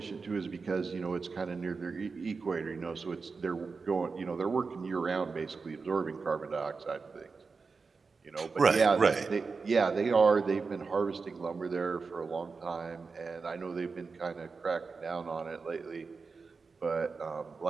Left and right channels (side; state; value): left; quieter; 4.6 dB